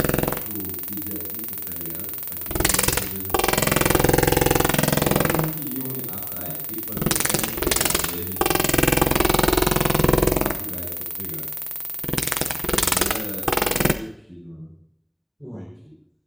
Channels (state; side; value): identical; both; correlation 1.00